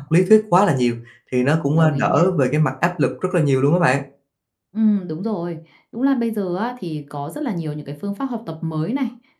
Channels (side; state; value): both; identical; correlation 1.00